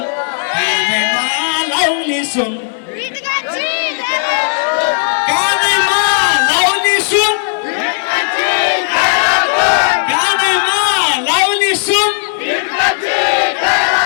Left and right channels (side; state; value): right; silent; digital silence